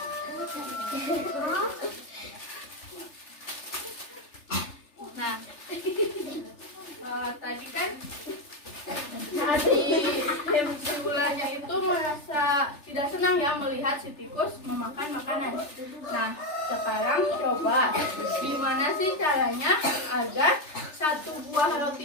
Nah, tadi kan si ularnya itu merasa tidak senang ya melihat si tikus memakan makanan. Nah, sekarang coba gimana sih caranya agar satu buah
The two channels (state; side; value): late; right; 3.3 ms